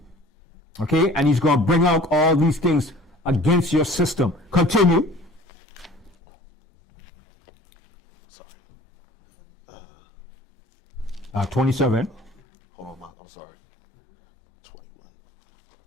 Okay? And he's going to bring out all these things against your system. Continue. Sorry. 27. Hold on, I'm sorry.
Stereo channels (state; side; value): normal; both; correlation 0.48